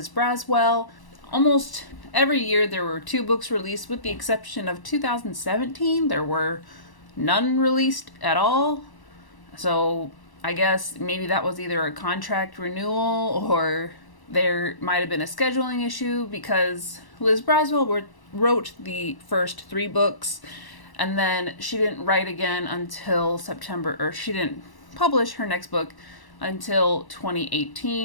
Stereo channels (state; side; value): late; right; 1.0 ms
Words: Braswell. Almost every year there were 2 books released, with the exception of 2017. There were none released at all. So I guess maybe that was either a contract renewal or there might have been a scheduling issue, because Liz Braswell wrote the first 3 books and then she didn't write again until September, or she didn't publish her next book until